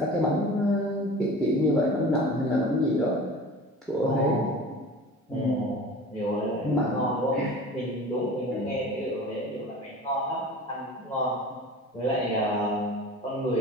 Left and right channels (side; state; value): both; normal; correlation 0.39